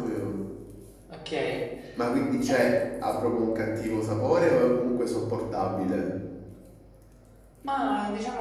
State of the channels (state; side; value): identical; both; correlation 1.00